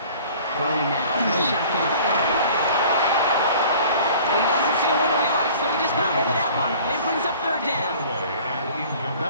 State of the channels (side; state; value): both; inverted; correlation -0.48